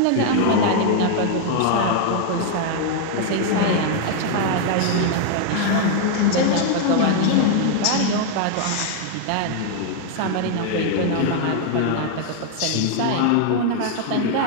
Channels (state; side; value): different; both; correlation 0.00